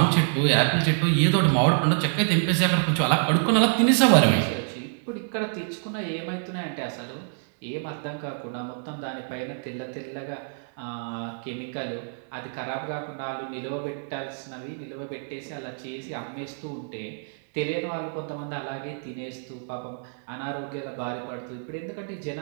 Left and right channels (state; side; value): silent; left; digital silence